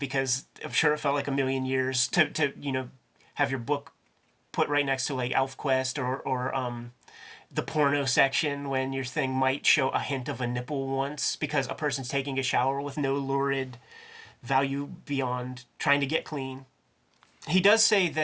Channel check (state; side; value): identical; both; correlation 1.00